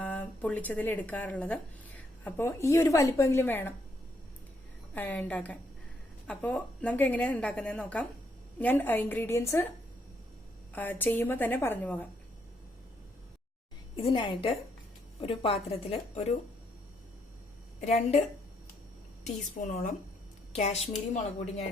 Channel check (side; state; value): both; normal; correlation 0.74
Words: പൊള്ളിച്ചതിൽ എടുക്കാറുള്ളത്. അപ്പോൾ ഈ ഒരു വലിപ്പമെങ്കിലും വേണം ഉണ്ടാക്കാൻ. അപ്പോൾ നമുക്ക് എങ്ങനെയാണ് ഉണ്ടാക്കുന്നതെന്ന് നോക്കാം. ഞാൻ ഇൻഗ്രീഡിയൻസ് ചെയ്യുമ്പോൾ തന്നെ പറഞ്ഞു പോകാം. ഇതിനായിട്ട് ഒരു പാത്രത്തിൽ ഒരു 2 ടീസ്പൂണോളം കാശ്മീരി മുളക് പൊടി ഞാൻ